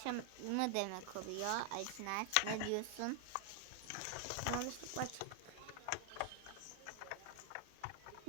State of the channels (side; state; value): both; different; correlation 0.00